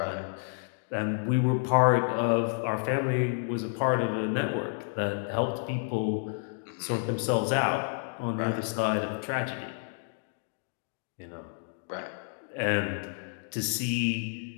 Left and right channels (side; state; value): right; silent; digital silence